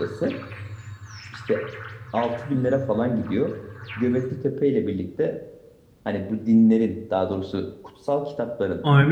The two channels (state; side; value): identical; both; correlation 1.00